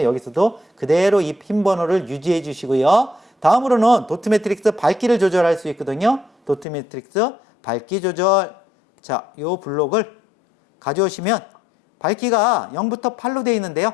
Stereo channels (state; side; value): drops out; right; at 6.7 s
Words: 여기서도 그대로 이 핀 번호를 유지해 주시고요. 다음으로는 도트 매트릭스 밝기를 조절할 수 있거든요. 도트 매트릭스 밝기 조절. 자, 요 블록을 가져오시면 밝기가 0부터 8로 되어 있는데요.